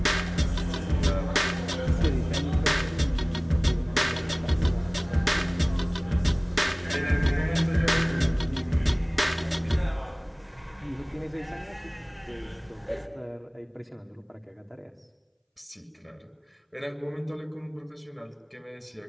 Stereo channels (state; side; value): identical; both; correlation 1.00